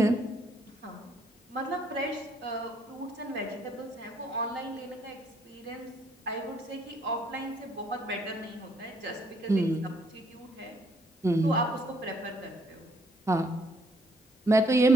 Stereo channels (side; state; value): both; normal; correlation 0.67